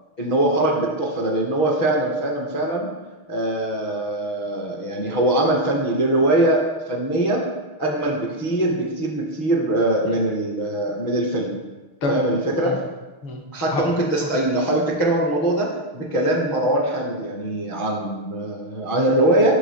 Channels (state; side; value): late; right; 6.5 ms